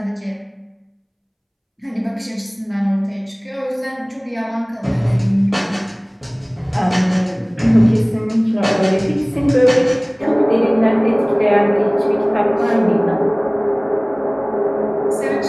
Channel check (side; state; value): both; identical; correlation 1.00